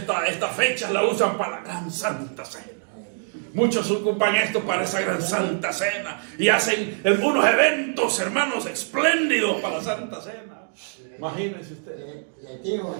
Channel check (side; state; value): left; silent; 62 dB below the other